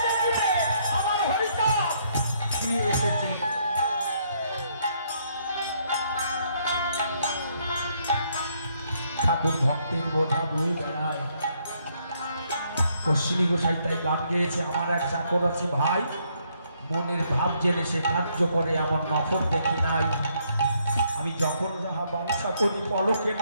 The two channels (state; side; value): inverted; both; correlation -0.71